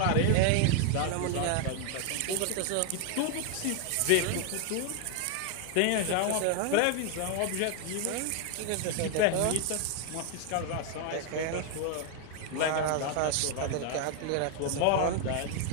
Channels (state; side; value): different; both; correlation 0.00